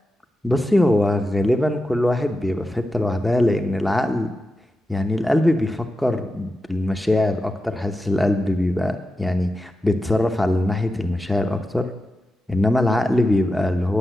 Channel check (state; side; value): normal; both; correlation 0.91